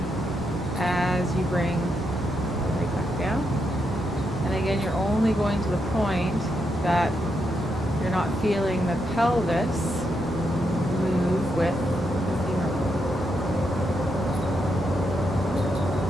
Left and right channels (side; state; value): both; normal; correlation 0.81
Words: as you bring the leg back down. And again, you're only going to the point that you're not feeling the pelvis move with the femur bone.